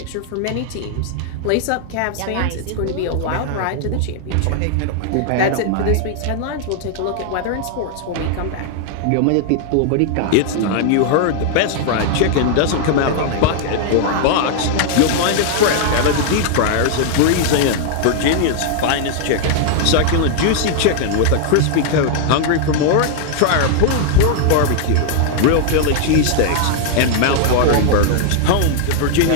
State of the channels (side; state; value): both; different; correlation 0.00